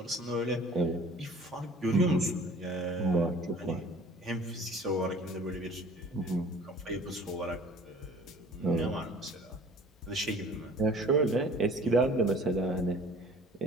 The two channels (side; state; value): both; normal; correlation 0.49